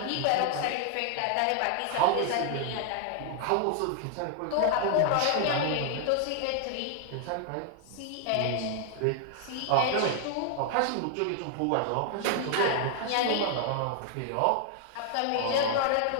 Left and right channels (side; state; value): both; different; correlation 0.00